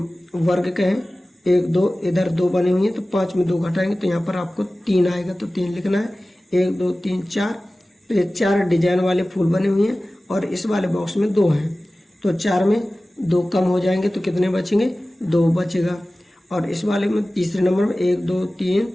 वर्ग कहें। 1 2, इधर 2 बने हुए हैं तो 5 में 2 घटाएंगे तो यहाँ पर आपको 3 आएगा, तो 3 लिखना है। 1 2 3 4, तो ये 4 डिजाइन वाले फूल बने हुए हैं और इस वाले बॉक्स में 2 हैं, तो 4 में 2 कम हो जाएंगे तो कितने बचेंगे, 2 बचेगा। और इस वाले में तीसरे नंबर में 1 2 3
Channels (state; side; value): normal; both; correlation 0.97